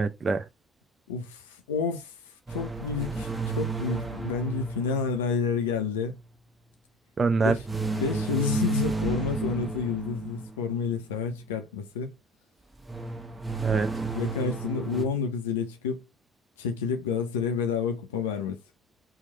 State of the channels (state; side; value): normal; both; correlation 0.33